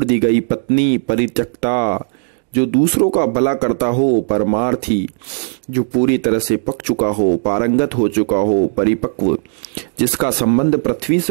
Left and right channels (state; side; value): silent; left; digital silence